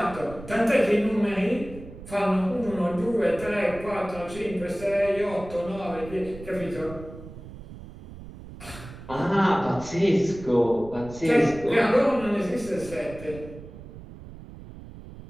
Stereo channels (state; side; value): noise; right; rumble, 15 dB below the sound